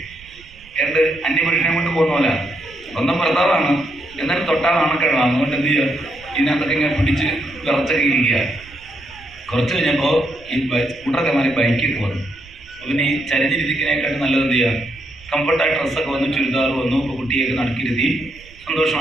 ഏണ്ട് അന്യപുരുഷനെ കൊണ്ട് പോകുന്ന പോലെ. സ്വന്തം ഭർത്താവാണ്, എന്നാലും തൊട്ടാൽ നാണക്കേടാണ്. അതുകൊണ്ട് എന്ത് ചെയ്യുക, ഇതിനകത്തൊക്കെ ഇങ്ങനെ പിടിച്ച് വിറച്ചൊക്കെ ഇരിക്കുക. കുറച്ച് കഴിഞ്ഞപ്പോൾ ഈ സ്കൂട്ടറൊക്കെ മാറി ബൈക്കൊക്കെ വന്നു. പിന്നെ ഈ ചരിഞ്ഞിരിക്കുന്നതിനെക്കാട്ടും നല്ലത് എന്ത് ചെയ്യുക, കംഫർട്ടായ ഡ്രസ്സൊക്കെ വന്നു, ചുരിദാർ വന്നു. ഇപ്പോൾ കുട്ടിയൊക്കെ നടക്കിരുത്തി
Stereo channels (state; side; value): noise; right; rumble, 23 dB below the sound